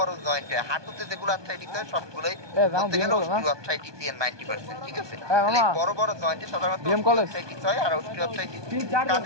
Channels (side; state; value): left; late; 1.2 ms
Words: জয়েন্ট হয়। হাঁটুতে যেগুলো আর্থ্রাইটিস হয় সবগুলোই বলতে গেলে অস্টিওআর্থ্রাইটিস এর 90%, ঠিক আছে। এই বড় বড় জয়েন্টে সাধারণত অস্টিওআর্থ্রাইটিস হয়। আর অস্টিওআর্থ্রাইটিস